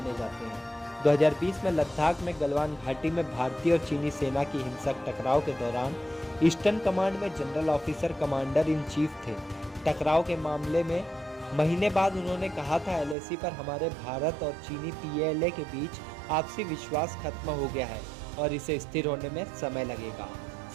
जाते हैं। 2020 में लद्दाख में गलवान घाटी में भारतीय और चीनी सेना की हिंसक टकराव के दौरान ईस्टर्न कमांड में general officer commander in chief थे। टकराव के मामले में महीने बाद उन्होंने कहा था, एलएसी पर हमारे भारत और चीनी पीएलए के बीच आपसी विश्वास खत्म हो गया है और इसे स्थिर होने में समय लगेगा।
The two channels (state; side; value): drops out; left; at 13.2 s